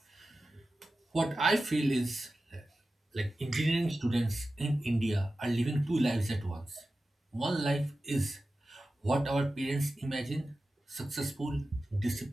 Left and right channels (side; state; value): both; normal; correlation 0.94